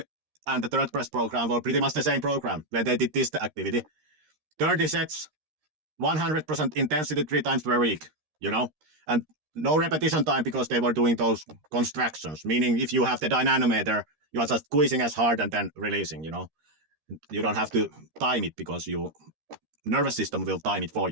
and the third best program were pretty much the same program, where they did this activity. 30 sets, 100% intensity 3 times per week, you know, and no repetition time because they were doing those contractions, meaning if you have the dynamometer, you are just squeezing as hard and then releasing, you know. You don't have to time it because your nervous system will time it for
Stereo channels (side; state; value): left; late; 13 ms